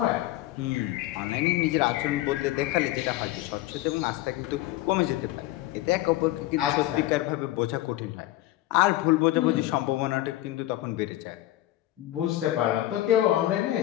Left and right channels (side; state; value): right; quieter; 15.7 dB